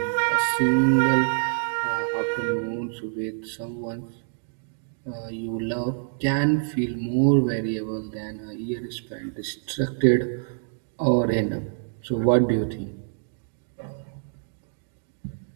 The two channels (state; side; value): silent; left; digital silence